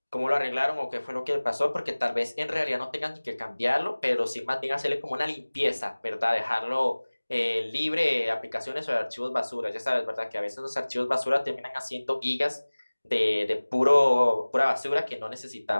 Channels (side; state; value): both; inverted; correlation -1.00